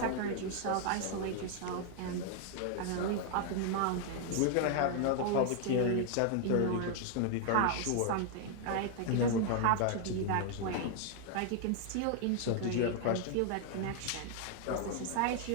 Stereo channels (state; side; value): different; both; correlation 0.00